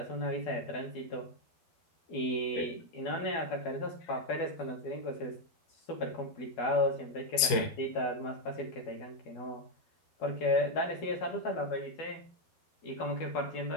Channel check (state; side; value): late; right; 12 ms